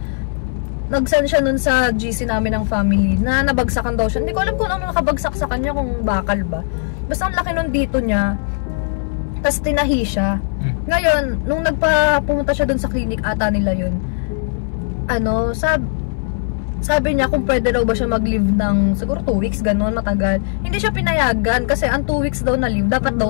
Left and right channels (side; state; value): right; silent; 62 dB below the other